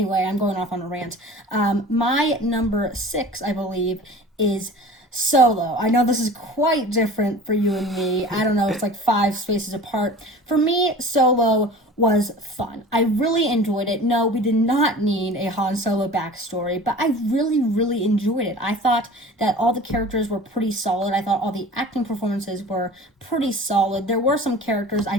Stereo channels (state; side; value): normal; both; correlation 0.40